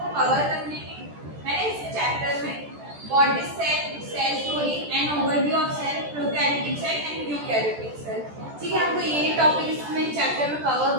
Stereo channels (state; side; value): late; left; 14 ms